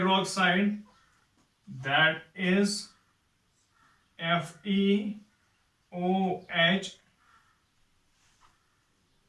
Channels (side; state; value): both; identical; correlation 1.00